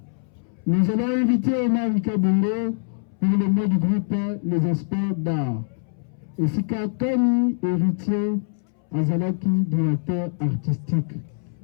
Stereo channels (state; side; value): silent; right; 63 dB below the other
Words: nous allons inviter Omar Kabungo pour le mot du groupe Les Experts d'art. Et Sika Kani, héritier, Azalaki, directeur artistique.